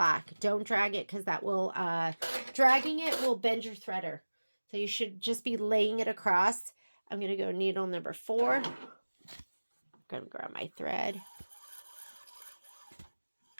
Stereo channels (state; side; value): inverted; both; correlation -1.00